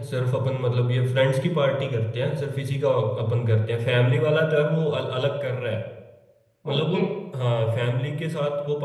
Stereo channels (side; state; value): both; identical; correlation 1.00